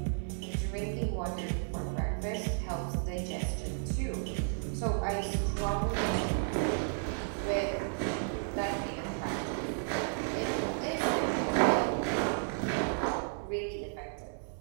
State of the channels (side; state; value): left; silent; 56 dB below the other